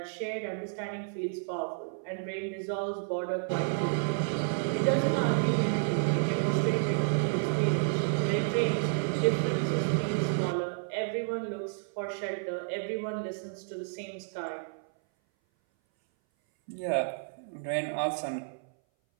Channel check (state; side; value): silent; left; 57 dB below the other